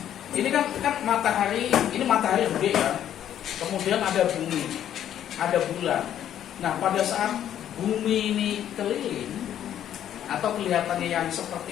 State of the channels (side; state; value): right; quieter; 10.7 dB